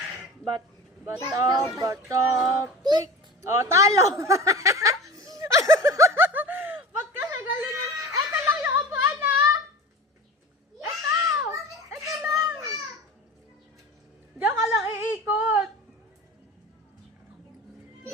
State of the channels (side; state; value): both; normal; correlation 0.34